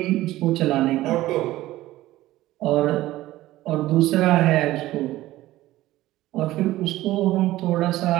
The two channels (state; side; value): quieter; left; 16.2 dB